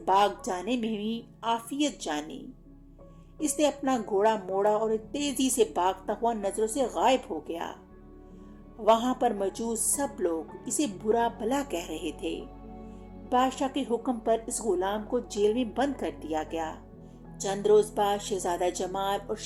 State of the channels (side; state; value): both; identical; correlation 1.00